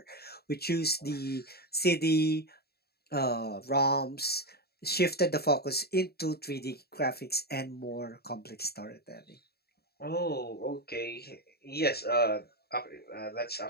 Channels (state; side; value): late; right; 0.46 ms